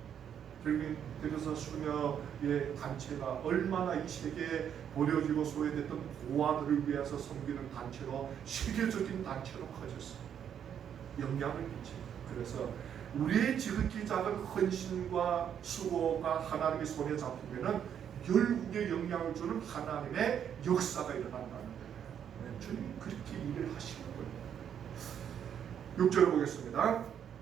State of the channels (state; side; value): quieter; left; 8.8 dB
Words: 그래서 수녀의 단체가 얼마나 이 세계에 버려지고 소외됐던 고아들을 위해서 섬기는 단체로 세계적인 단체로 커졌어요. 영향을 끼칩니다. 그래서 우리의 지극히 작은 헌신과 수고가 하나님의 손에 잡히면은 열국에 영향을 주는 하나님의 역사가 일어난다는 거예요. 주님 그렇게 일을 하시는 거예요. 6절 보겠습니다.